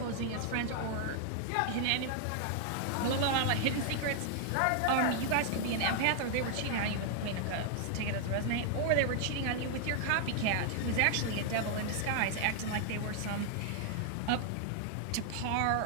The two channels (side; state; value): both; different; correlation 0.00